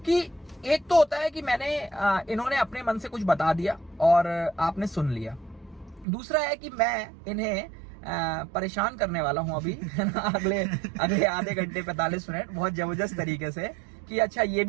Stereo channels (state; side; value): drops out; left; at 6.1 s